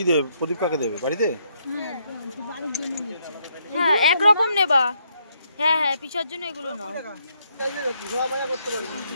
দেবে? প্রদীপ কাকে দেবে? বাড়িতে? হ্যাঁ একরকম নেবা। হ্যাঁ হ্যাঁ, পিসার জন্য এগুলো নাও।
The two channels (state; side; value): inverted; both; correlation -0.75